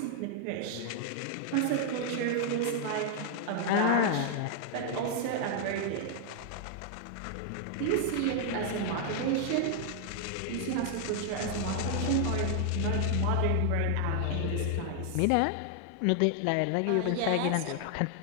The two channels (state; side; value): different; both; correlation 0.00